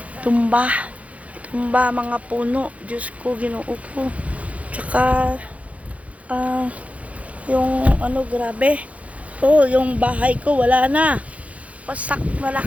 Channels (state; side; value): late; left; 0.066 ms